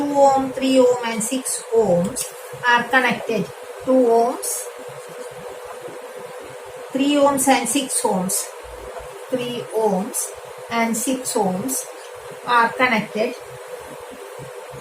ohm, 3 ohm and 6 ohms are connected? 2 ohms, 3 ohms and 6 ohms, 3 ohms and 6 ohms are connected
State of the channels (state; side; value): identical; both; correlation 1.00